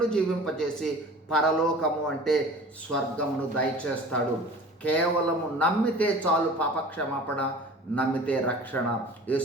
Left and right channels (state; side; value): normal; both; correlation 0.42